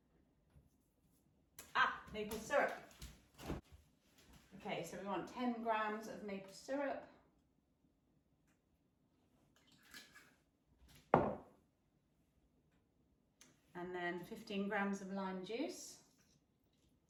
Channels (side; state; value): both; identical; correlation 1.00